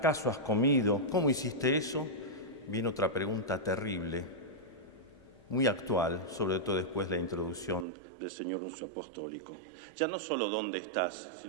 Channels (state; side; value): drops out; left; at 7.9 s